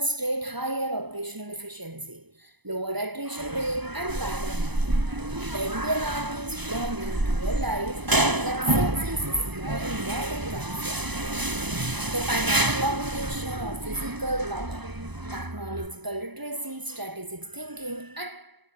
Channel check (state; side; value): late; left; 0.99 ms